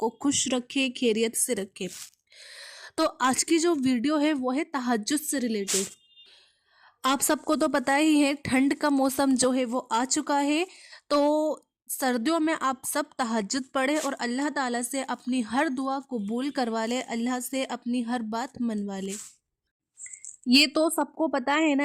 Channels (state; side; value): identical; both; correlation 1.00